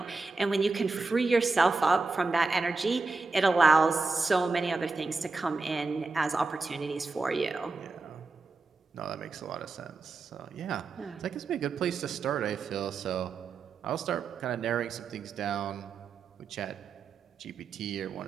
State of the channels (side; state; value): left; quieter; 3.9 dB